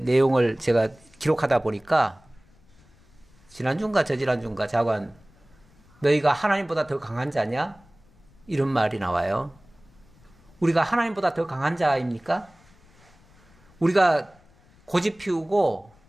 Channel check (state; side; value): noise; left; rumble, 29 dB below the sound